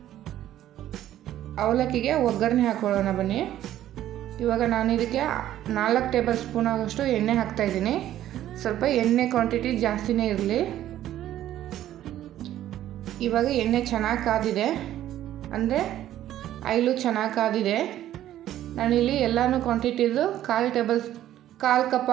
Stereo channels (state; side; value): quieter; left; 12.6 dB